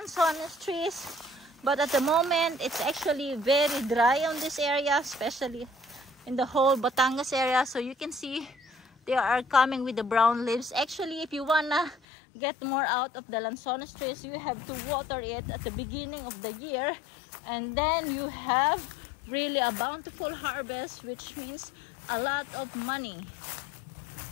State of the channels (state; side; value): drops out; right; at 12.0 s